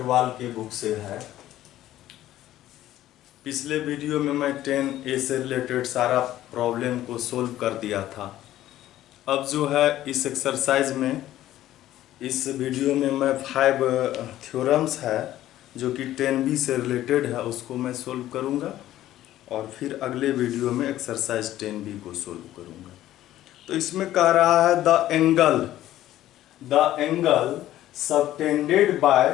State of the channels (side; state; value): right; quieter; 13.7 dB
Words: की बुक से है। पिछले वीडियो में मैं 10A से रिलेटेड सारा प्रॉब्लम को सोल्व कर दिया था। अब जो है इस एक्सरसाइज में, इस वीडियो में मैं 5 थ्योरम्स है जो कि 10B से रिलेटेड है, उसको मैं सोल्व करूंगा और फिर अगले वीडियो में एक्सरसाइज 10B को सोल्व करूंगा। तो इसमें कह रहा है the angle subtended